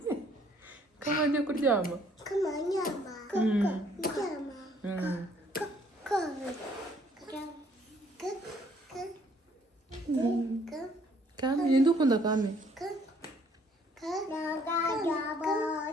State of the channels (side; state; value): both; normal; correlation 0.63